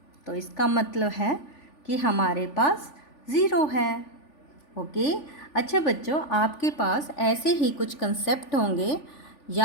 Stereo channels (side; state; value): right; late; 3.4 ms